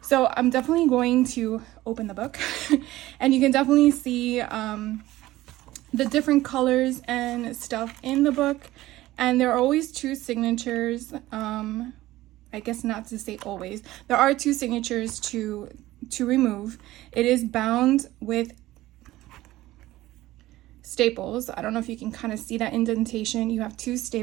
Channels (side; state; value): left; quieter; 16.6 dB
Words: So I'm definitely going to open the book and you can definitely see the different colors and stuff in the book, and there are always 2 signatures. I guess not to say always, there are 2 signatures to remove. It is bound with staples. I don't know if you can kind of see that indentation. You have 2